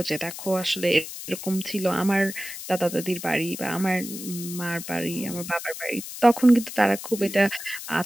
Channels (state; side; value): noise; left; hiss, 10 dB below the sound